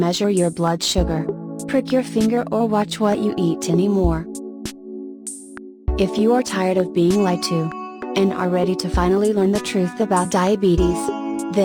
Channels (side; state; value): both; identical; correlation 1.00